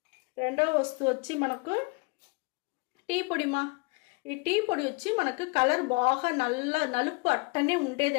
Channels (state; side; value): quieter; right; 29.4 dB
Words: రెండవ వస్తువు వచ్చి మనకు టీ పొడిమా. ఈ టీ పొడి వచ్చి మనకు కలర్ బాగా నలుపు అట్టనే